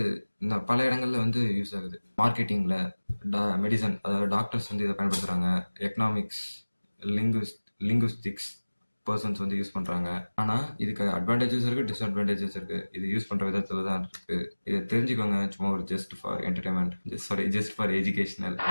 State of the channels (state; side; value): inverted; both; correlation -1.00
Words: பல இடங்கள்ல வந்து யூஸ் ஆகுது. மார்க்கெட்டிங்ல, மெடிசன், அதாவது டாக்டர்ஸ் வந்து இதை பயன்படுத்துறாங்க. எக்கனாமிக்ஸ், லிங்குஸ்டிக்ஸ் பர்சன்ஸ் வந்து யூஸ் பண்றாங்க. ஆனா இதுக்கு அட்வான்டேஜஸ் இருக்கு, டிஸ்அட்வான்டேஜஸ் இருக்கு. இது யூஸ் பண்ற விதத்துல தான் இருக்கு. இதை தெரிஞ்சுக்கோங்க. சும்மா ஒரு just for entertainment, just for educational.